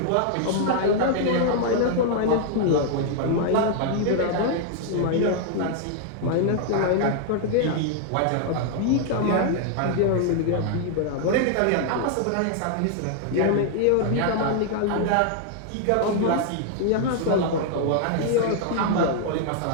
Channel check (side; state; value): both; different; correlation -0.01